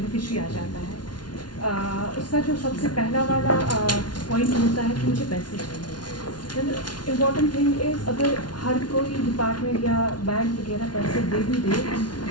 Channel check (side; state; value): right; late; 0.70 ms